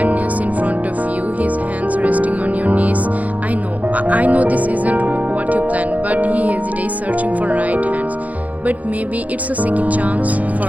kneels in front of you, his hands resting on your knees. I know this isn't what you planned, but he hesitates, searching for right hands. But maybe it's a second chance for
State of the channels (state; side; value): late; left; 0.074 ms